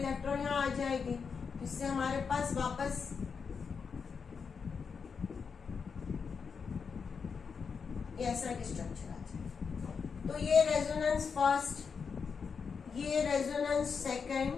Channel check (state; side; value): quieter; right; 5.8 dB